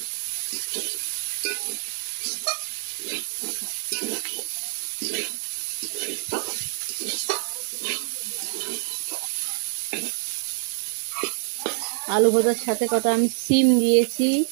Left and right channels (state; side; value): silent; left; digital silence